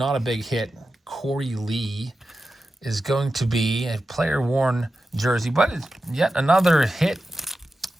a big hit. Corey Lee is going to be a player-worn jersey, but it's yet another hit.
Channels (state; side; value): normal; both; correlation 0.92